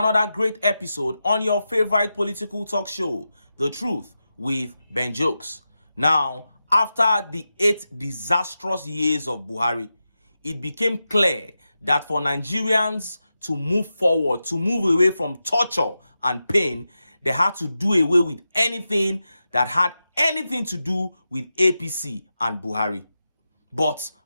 great episode on your favorite political talk show, The Truth with Ben Jokes. Now, after the 8 disastrous years of Buhari, it became clear that for Nigerians to move forward, to move away from torture and pain, they had to do away with anything that had anything to do with APC and Buhari. But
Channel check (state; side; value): inverted; both; correlation -0.91